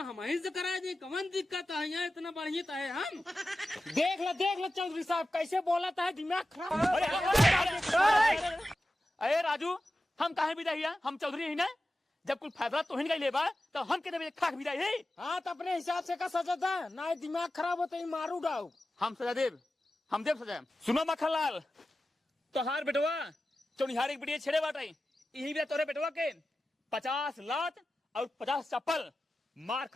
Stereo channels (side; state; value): both; normal; correlation 0.94